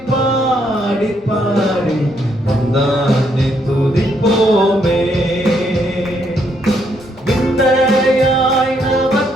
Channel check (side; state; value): both; normal; correlation 0.73